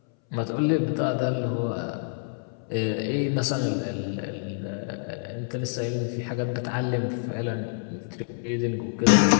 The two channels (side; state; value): right; silent; 60 dB below the other